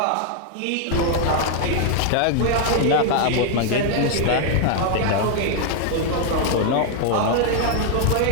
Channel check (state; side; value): different; both; correlation 0.00